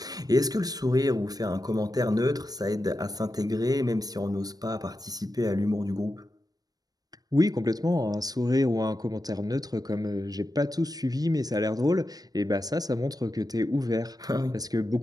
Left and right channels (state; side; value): late; left; 0.19 ms